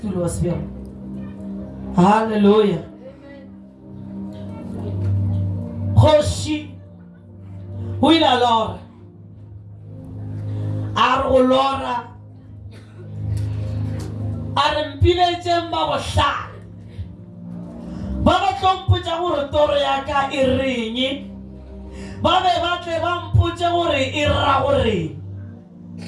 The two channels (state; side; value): identical; both; correlation 1.00